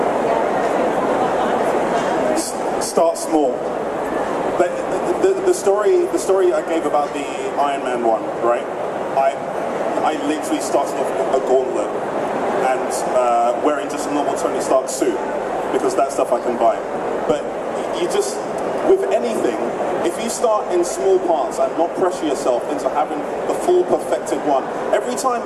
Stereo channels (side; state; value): both; identical; correlation 1.00